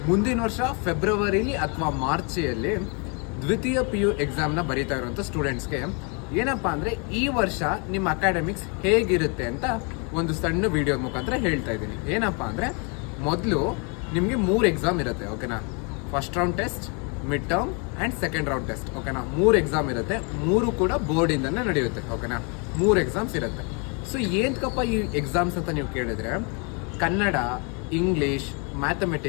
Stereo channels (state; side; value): quieter; right; 34.8 dB